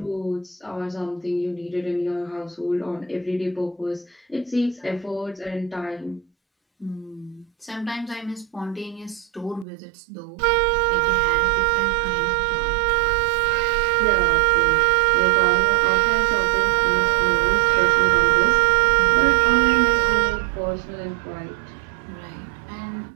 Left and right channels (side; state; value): left; drops out; at 9.7 s